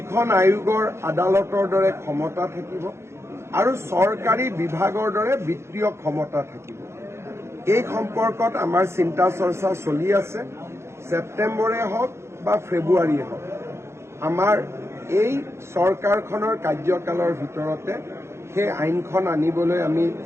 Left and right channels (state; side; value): late; left; 0.13 ms